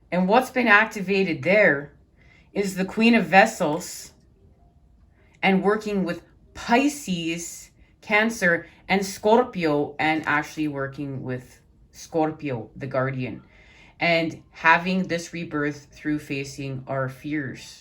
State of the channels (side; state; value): both; identical; correlation 1.00